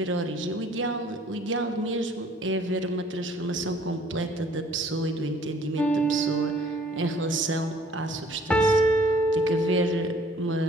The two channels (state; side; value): normal; both; correlation 0.57